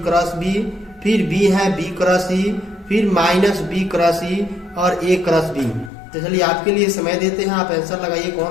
क्रॉस बी, फिर बी है बी क्रॉस ई, फिर माइनस बी क्रॉस ई और ए क्रॉस बी। तो चलिए आपके लिए समय देते हैं, आप आंसर लगाइए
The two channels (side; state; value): right; drops out; at 5.9 s